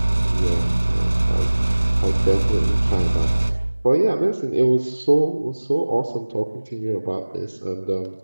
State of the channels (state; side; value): inverted; both; correlation -1.00